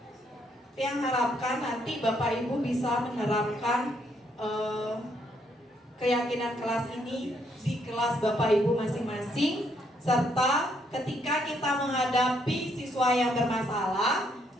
Yang harapkan nanti Bapak Ibu bisa menerapkan keyakinan kelas ini di kelas Bapak Ibu masing-masing, serta ketika kita menghadapi siswa yang bermasalah,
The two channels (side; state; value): both; normal; correlation 0.72